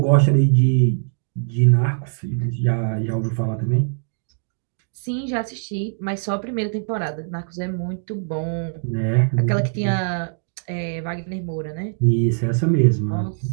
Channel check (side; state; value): left; silent; digital silence